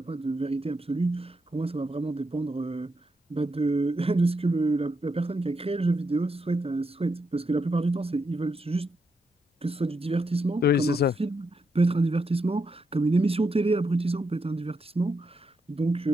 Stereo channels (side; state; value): both; normal; correlation 0.82